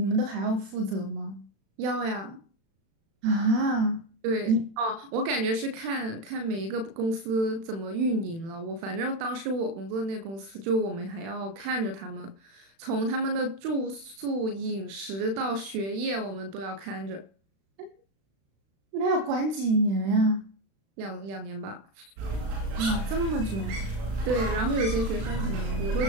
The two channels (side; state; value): left; late; 36 ms